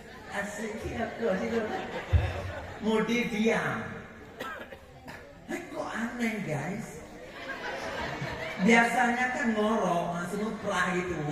Asyik kau sih mode diam. Kok aneh guys. Biasanya kan ngorok semua perah itu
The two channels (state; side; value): identical; both; correlation 1.00